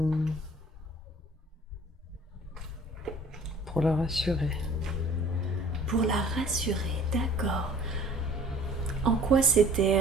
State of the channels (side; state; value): both; normal; correlation 0.51